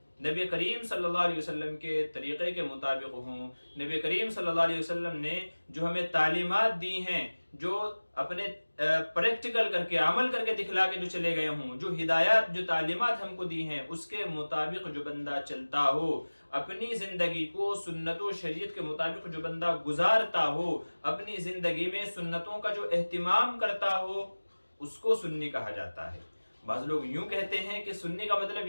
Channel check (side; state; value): both; inverted; correlation -1.00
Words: नबी करीम सल्लल्लाहु अलैहि वसल्लम के तरीक़े के मुताबिक हों। नबी करीम सल्लल्लाहु अलैहि वसल्लम ने जो हमें तालीमात दी हैं, जो अपने प्रैक्टिकल करके अमल करके दिखला के जो चले गए हों, जो हिदायत जो तालीमात हमको दी हैं, उसके मुताबिक जो बंदा चलता हो, अपनी जिंदगी को सुन्नत व शरीयत के मुताबिक जो बंदा गुजारता हो, अपनी जिंदगी में सुन्नतों का जो एहतिमाम करता हो, उसको सुन्नी कहा जाता है। बाज़ लोग यूं कहते हैं कि सुन्नी का मतलब